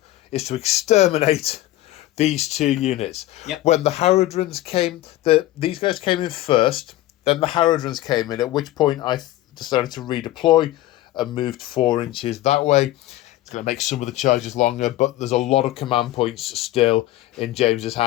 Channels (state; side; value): quieter; right; 15.7 dB